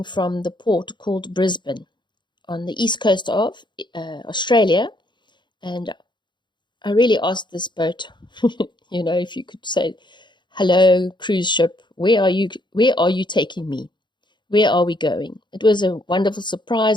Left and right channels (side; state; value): right; late; 0.22 ms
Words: from the port called Brisbane on the east coast of Australia. And I really asked this boat, if you could say, hello, cruise ship, where are you taking me? Where are we going? It was a wonderful